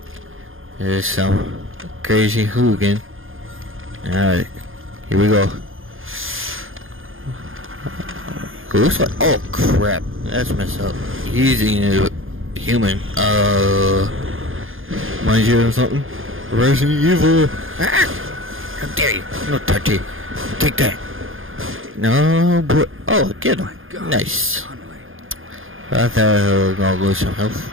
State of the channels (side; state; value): left; late; 0.59 ms